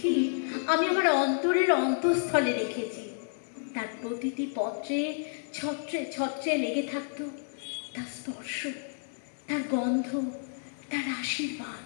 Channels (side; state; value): right; silent; 58 dB below the other